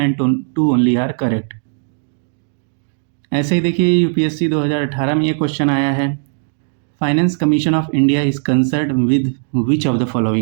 2 ओनली आर करेक्ट। ऐसे ही देखिए यूपीएससी 2018 में ये क्वेश्चन आया है। Finance commission of India is concerned with which of the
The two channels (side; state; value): left; silent; 65 dB below the other